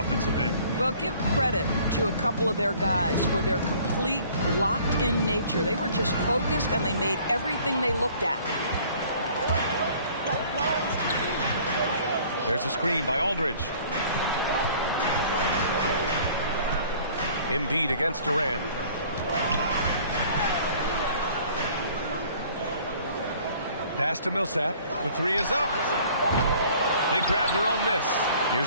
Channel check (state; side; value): inverted; both; correlation -0.53